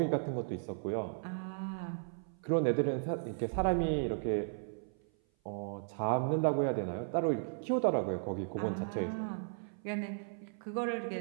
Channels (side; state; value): left; silent; 54 dB below the other